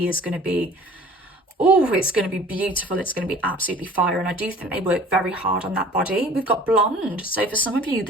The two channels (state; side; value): normal; both; correlation 0.48